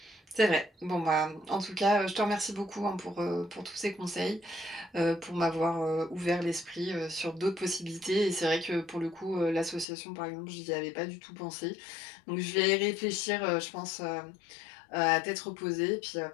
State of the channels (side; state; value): right; drops out; at 9.9 s